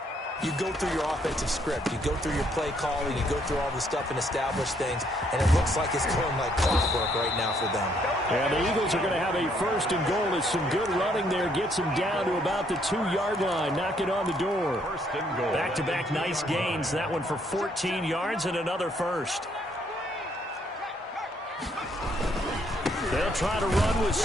you go through your offensive script. You go through your play calling. You go through all the stuff and establish things. And it looks like it's going like clockwork right now for them. And the Eagles are going to have a 1st and goal as some good running there gets them down to about the 2-yard line. Knock it on the door. 1st and goal. Back-to-back nice gains. That one for 14 yards and another 1st. They'll try to run with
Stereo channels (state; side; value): normal; both; correlation 0.69